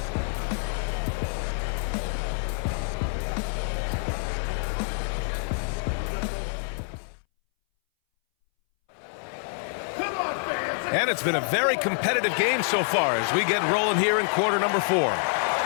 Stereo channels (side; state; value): right; silent; 60 dB below the other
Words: And it's been a very competitive game so far as we get rolling here in quarter number 4.